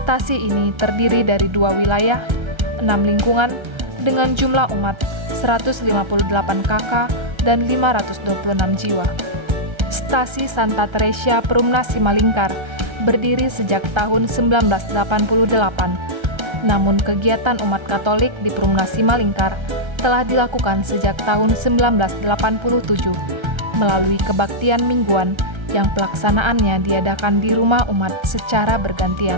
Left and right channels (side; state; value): left; late; 1.3 ms